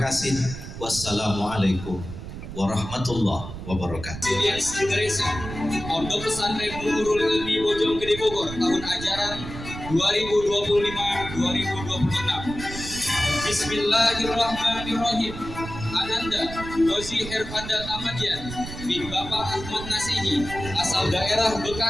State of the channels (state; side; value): noise; right; rumble, 10 dB below the sound